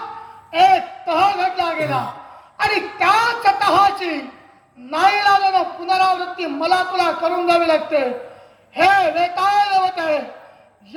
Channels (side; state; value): both; identical; correlation 1.00